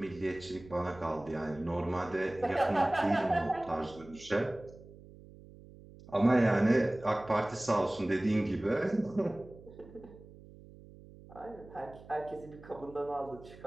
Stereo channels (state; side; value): noise; right; hum, 20 dB below the sound